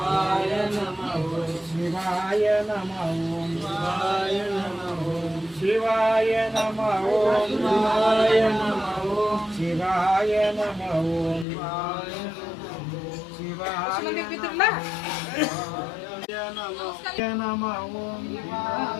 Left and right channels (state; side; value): drops out; right; at 11.5 s